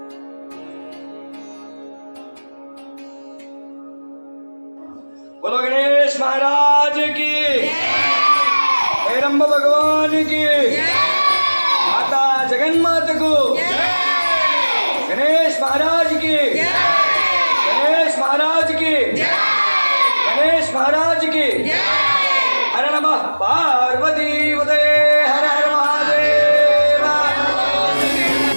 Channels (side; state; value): both; inverted; correlation -1.00